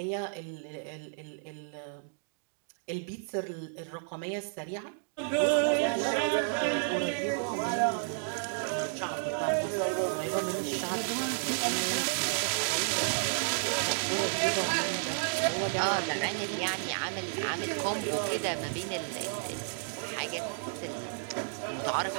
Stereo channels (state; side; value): silent; left; digital silence